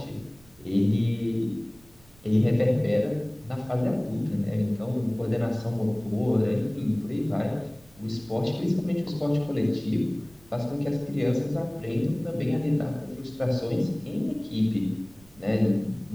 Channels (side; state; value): right; noise; rumble, 27 dB below the sound